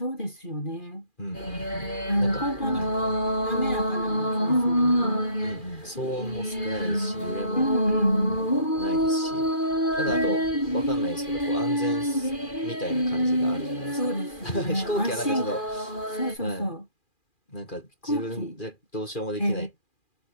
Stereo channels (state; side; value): late; right; 2.4 ms